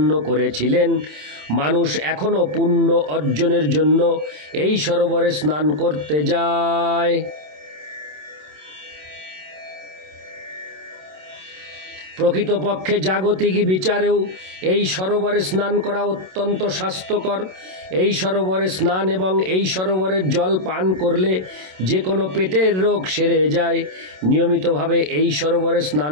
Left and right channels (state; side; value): late; left; 27 ms